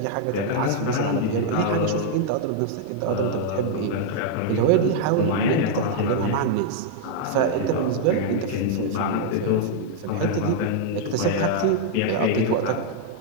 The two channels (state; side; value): different; both; correlation -0.01